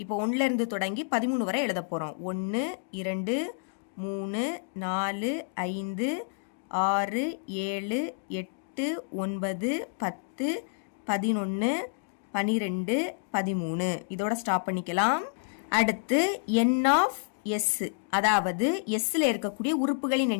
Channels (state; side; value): silent; right; digital silence